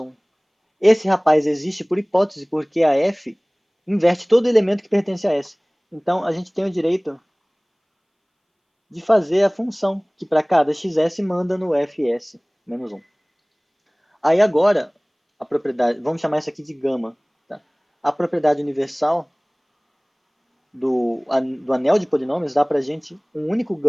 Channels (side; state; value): both; identical; correlation 1.00